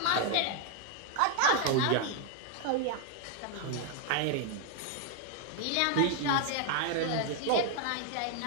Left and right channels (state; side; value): different; both; correlation 0.00